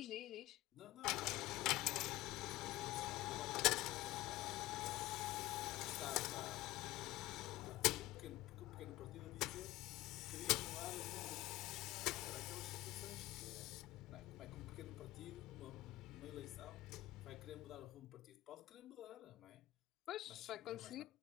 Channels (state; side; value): quieter; right; 17.2 dB